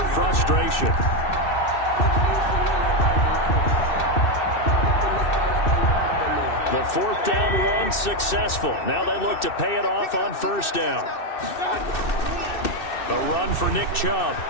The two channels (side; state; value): right; late; 2.6 ms